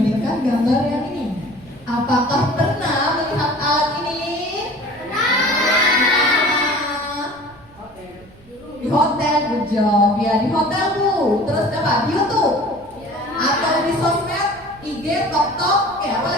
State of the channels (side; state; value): right; noise; rumble, 26 dB below the sound